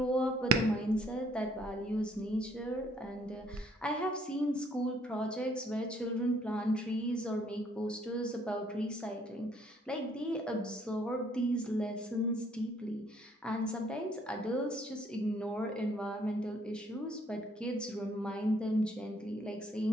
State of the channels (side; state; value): both; normal; correlation 0.64